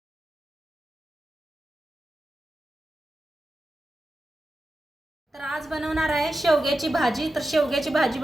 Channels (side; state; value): both; normal; correlation 0.91